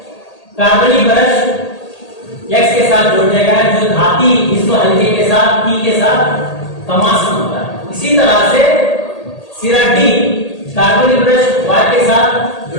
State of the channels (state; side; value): late; right; 1.8 ms